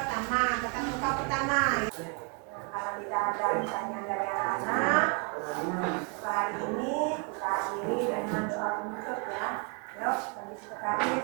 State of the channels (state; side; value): quieter; left; 34.7 dB